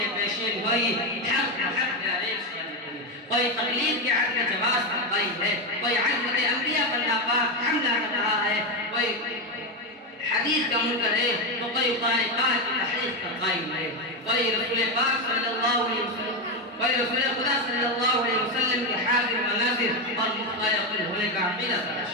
پیشین گوئی حق جاری کوئی تقلید کے حق میں جواز پر قائم ہے، کوئی عظمت انبیاء پر ناپاک حملہ کر رہا ہے، کوئی حدیث کا منکر ہے تو کوئی قرآن پاک کی تحریف پر قائم ہے، کوئی رسول پاک صلی اللہ علیہ وسلم، کوئی رسول خدا صلی اللہ علیہ وسلم کے حاضر و ناظر اور مختلف ہونے کا عقیدہ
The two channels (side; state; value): both; normal; correlation 0.10